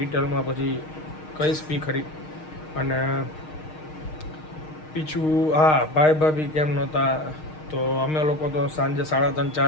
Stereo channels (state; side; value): late; right; 6.5 ms